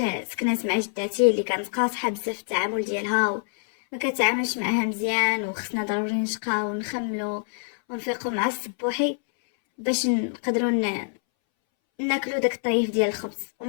سكنات مع جداتي اللي كانت قاصحه بزاف في التعامل ديالها وما كتعاملش معاها مزيان، وخصنا ضروري نشقاو ونخملو ونفيقو مع الصبوحي باش نقدروا ناكلو داك الطريف ديال الخبز،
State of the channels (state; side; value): silent; right; 61 dB below the other